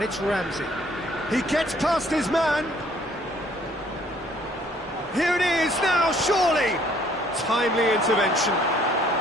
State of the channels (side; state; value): both; normal; correlation 0.61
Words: it's Ramsey. He gets past his man. Here it is now, surely! Timely intervention.